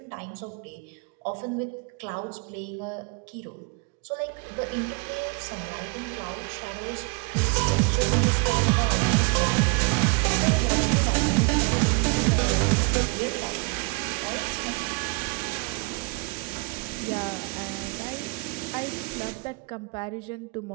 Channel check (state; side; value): quieter; left; 31.2 dB